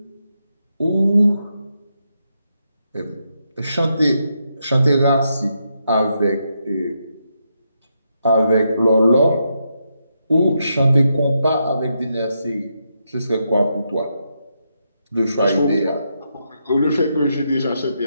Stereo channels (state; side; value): inverted; both; correlation -0.82